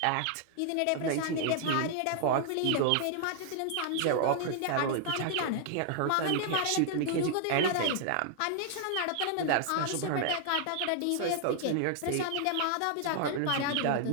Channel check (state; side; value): different; both; correlation 0.00